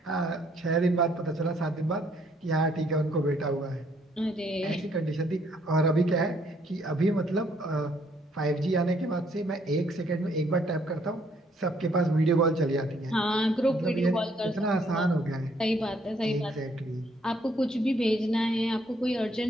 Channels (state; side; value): normal; both; correlation 0.67